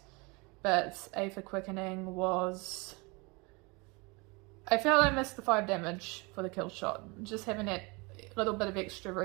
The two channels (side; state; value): left; quieter; 27.9 dB